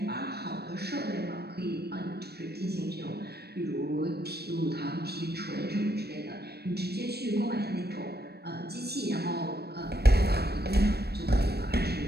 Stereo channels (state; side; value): late; left; 0.47 ms